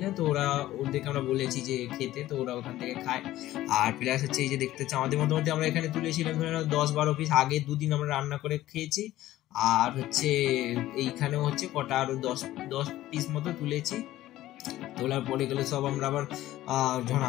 না, তো ওদেরকে আমরা বলেছি যে খেতে, তো ওরা ওখান থেকে খায়। আর প্লাস হচ্ছে এই যে দেখতে হচ্ছে আমাদের মোটামুটি আমরা এখানে তুলেছিলাম 10-12 পিস, আগে 2 দিন আমরা রান্না করে খেয়েছি। আর হচ্ছে এইখানেও হচ্ছে কটা আরো 10 পিস মতো তুলেছি। তোলার পরে গেলে সব আমরা আবার যখন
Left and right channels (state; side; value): quieter; right; 15.0 dB